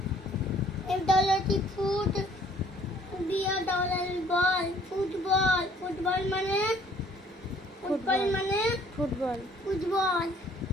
F-double-T, foot. B-A-double-L, ball, football মানে football মানে football. Football.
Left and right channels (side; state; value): both; normal; correlation 0.59